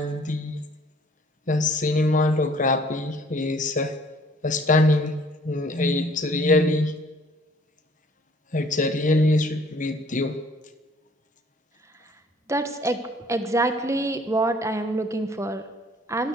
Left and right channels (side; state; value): both; normal; correlation 0.57